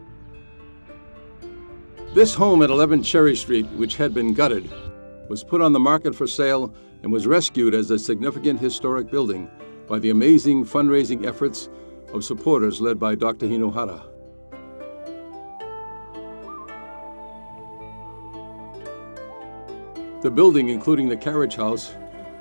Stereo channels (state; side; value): inverted; both; correlation -1.00